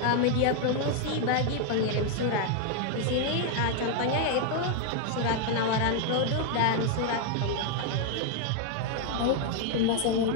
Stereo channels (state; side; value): different; both; correlation 0.01